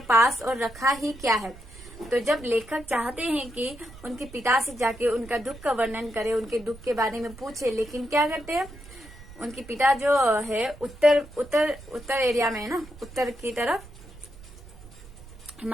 पास और रखा ही क्या है। तो जब लेखक चाहते हैं कि उनके पिता से जाके उनका दुख का वर्णन करे, उनके दुख के बारे में पूछे, लेकिन क्या करते हैं उनके पिता जो है उत्तर एरिया में है ना, उत्तर की तरफ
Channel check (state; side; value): noise; right; rumble, 18 dB below the sound